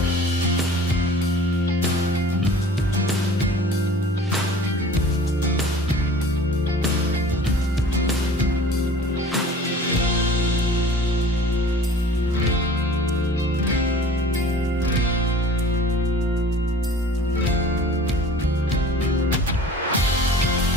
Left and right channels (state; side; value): normal; both; correlation 0.46